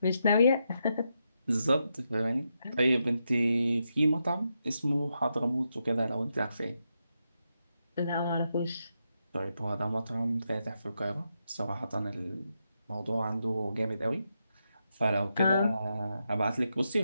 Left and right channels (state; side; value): inverted; both; correlation -0.84